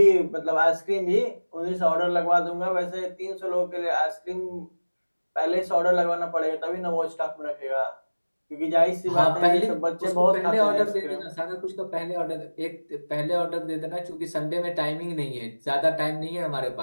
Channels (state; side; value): inverted; both; correlation -1.00